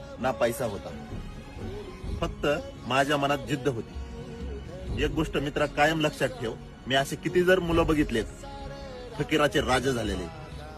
ना पैसा होता. फक्त माझ्या मनात जिद्द होती. एक गोष्ट मित्रा कायम लक्षात ठेव, मी असे किती जर मुलं बघितलेत फकीराचे राजे झालेले.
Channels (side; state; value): both; identical; correlation 1.00